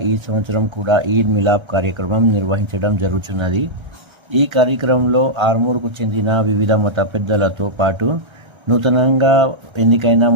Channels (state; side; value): late; left; 1.3 ms